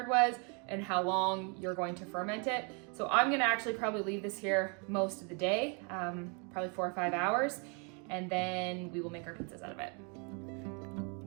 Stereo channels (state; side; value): quieter; left; 36.0 dB